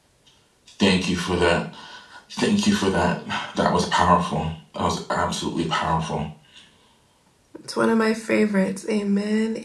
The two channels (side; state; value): both; identical; correlation 1.00